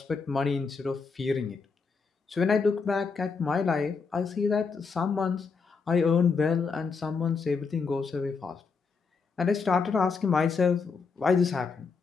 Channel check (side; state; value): right; quieter; 5.0 dB